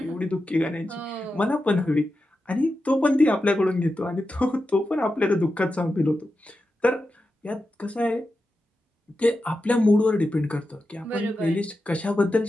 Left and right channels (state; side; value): normal; both; correlation 0.90